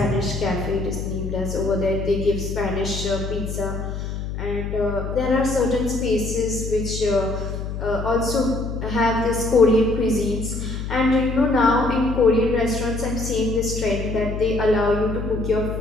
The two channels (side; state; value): left; noise; hum, 5 dB below the sound